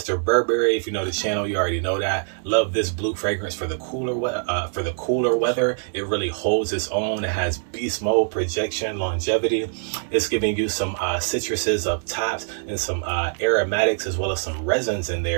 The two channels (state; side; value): silent; left; digital silence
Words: Burberry. If you know the channel, you already know that. Love this blue fragrance for the cooler weather. It really holds its own. It has beast mode, projection, longevity. It's giving you some citruses up tops and some aromatics, as well as some resins in